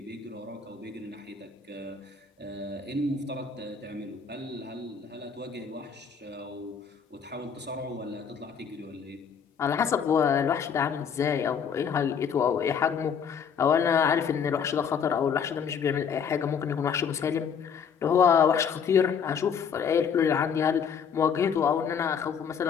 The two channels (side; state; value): right; quieter; 6.9 dB